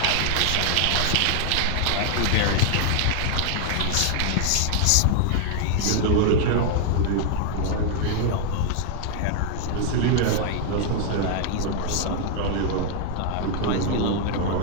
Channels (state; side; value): different; both; correlation 0.00